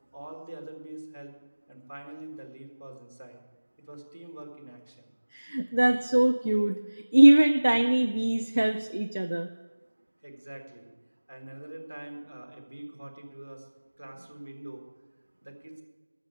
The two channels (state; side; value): inverted; both; correlation -1.00